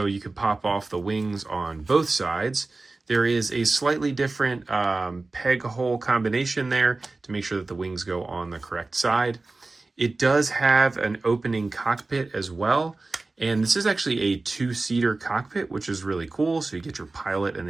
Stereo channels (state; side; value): quieter; left; 3.4 dB